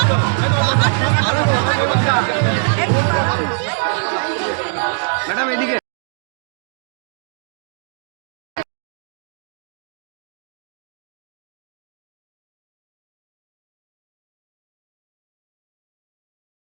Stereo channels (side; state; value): left; silent; digital silence